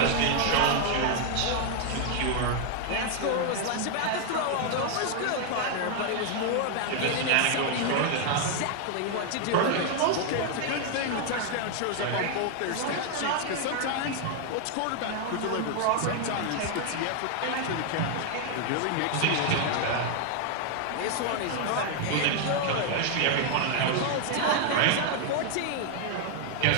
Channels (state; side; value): different; both; correlation 0.00